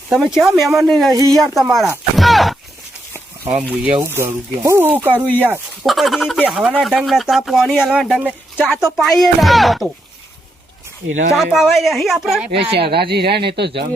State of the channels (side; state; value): both; normal; correlation 0.81